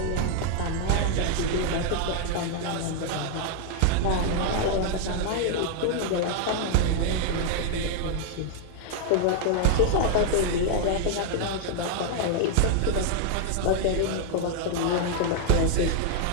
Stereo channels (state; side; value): different; both; correlation 0.00